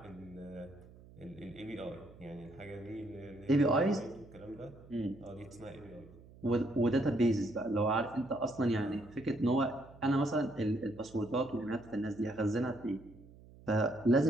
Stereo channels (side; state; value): right; noise; hum, 21 dB below the sound